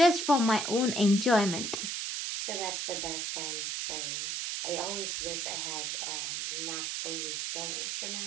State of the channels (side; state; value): right; noise; hiss, 2 dB below the sound